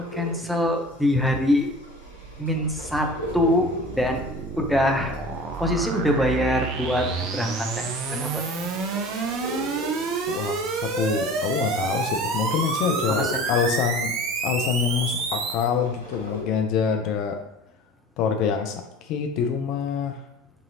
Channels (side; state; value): both; normal; correlation 0.40